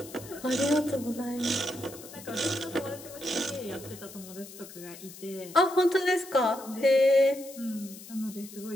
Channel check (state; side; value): noise; left; hiss, 16 dB below the sound